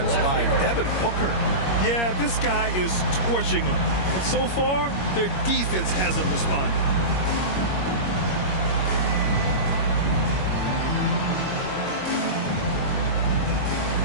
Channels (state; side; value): late; right; 21 ms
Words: by Devin Booker. Yeah, this guy is torching them. And so far, their defense hasn't responded.